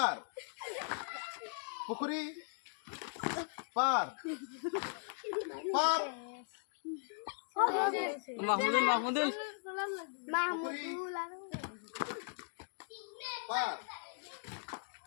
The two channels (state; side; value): silent; right; digital silence